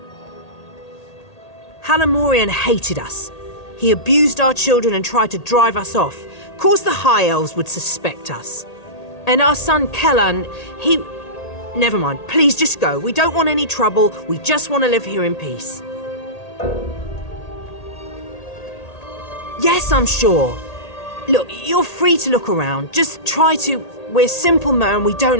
Halimorian hated us. He abused our children and tried to drive us off. Of course the High Elves would suspect us. And our son Kellan, he... Never mind, please just go. We don't want any trouble. We just want to live here in peace. Yes, I'm sure. Look, you're free to look around. Just try to... We're simple men, we don't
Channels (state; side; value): late; right; 1.8 ms